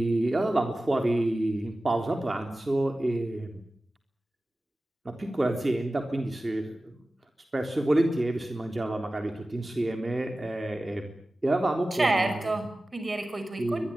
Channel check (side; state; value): both; normal; correlation 0.96